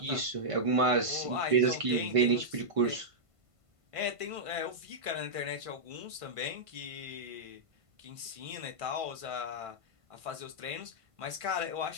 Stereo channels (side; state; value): left; late; 1.5 ms